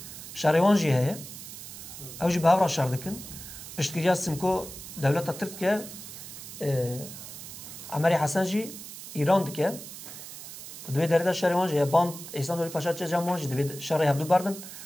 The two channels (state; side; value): noise; right; hiss, 12 dB below the sound